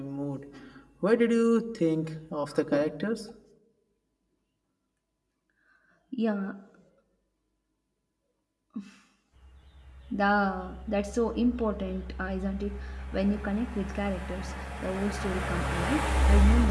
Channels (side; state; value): both; identical; correlation 1.00